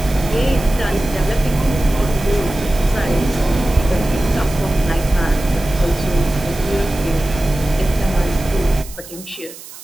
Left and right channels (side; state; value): right; noise; hiss, 16 dB below the sound